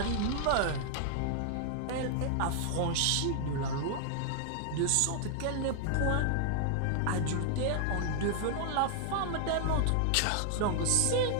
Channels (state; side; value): different; both; correlation 0.00